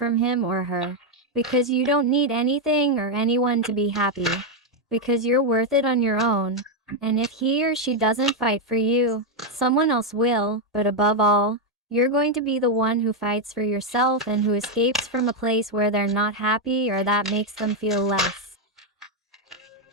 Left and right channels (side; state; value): both; normal; correlation 0.03